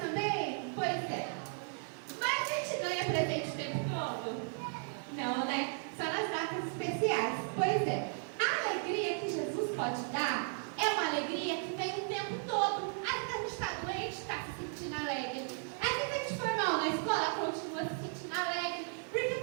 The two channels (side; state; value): left; silent; 54 dB below the other